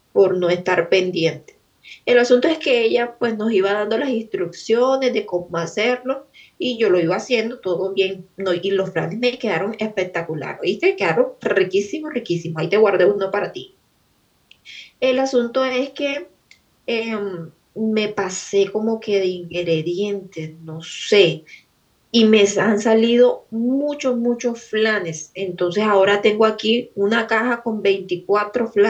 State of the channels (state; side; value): identical; both; correlation 1.00